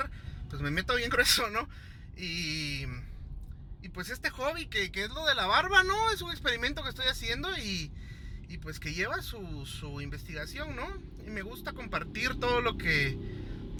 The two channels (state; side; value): identical; both; correlation 1.00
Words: Pues me meto bien grueso, ¿no? Y pues este hobby que es lo de la barba, ¿no? Es un experimento que estoy haciendo y pues que lleva su investigación, ¿no? Y me gusta compartir todo lo que